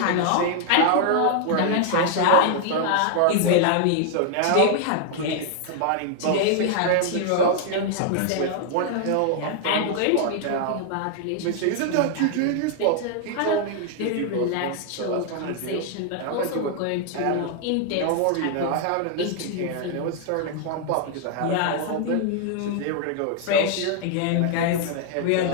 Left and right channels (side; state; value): both; different; correlation 0.00